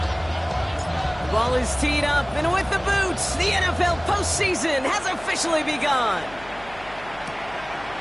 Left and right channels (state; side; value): noise; left; hum, 20 dB below the sound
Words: Ball is teed up, and with the boots, the NFL postseason has officially begun.